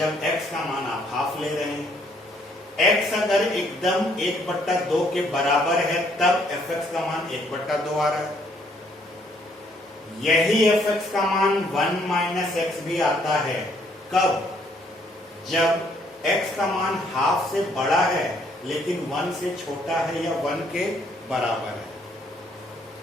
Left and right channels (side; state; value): both; normal; correlation 0.67